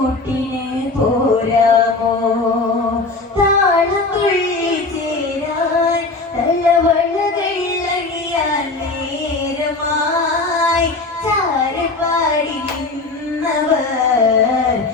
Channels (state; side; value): quieter; right; 3.4 dB